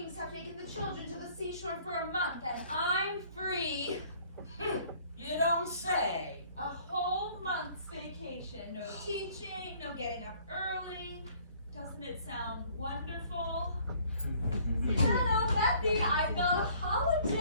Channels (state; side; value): inverted; both; correlation -0.57